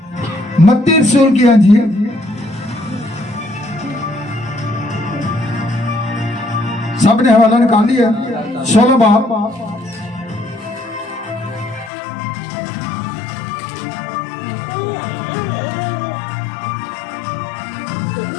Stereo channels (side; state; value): right; drops out; at 11.9 s